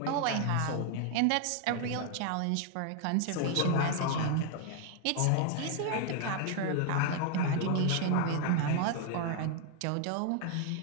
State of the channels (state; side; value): different; both; correlation 0.00